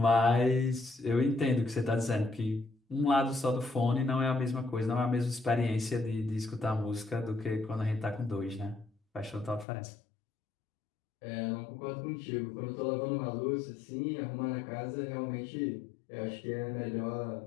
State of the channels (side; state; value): right; drops out; at 9.7 s